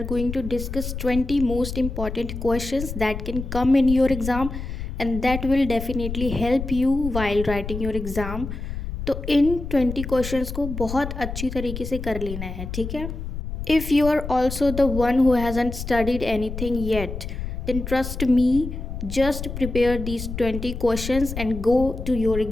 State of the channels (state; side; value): noise; left; rumble, 7 dB below the sound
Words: going to discuss 20 most important questions that can come in your exam and that will definitely help you while writing your exam. तो इन 20 questions को बहुत अच्छी तरीके से कर लेना है, ठीक है। If you are also the one who hasn't studied anything yet, then trust me, just prepare these 20 questions and go to your